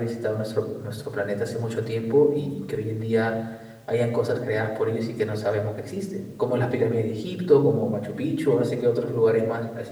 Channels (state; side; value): identical; both; correlation 1.00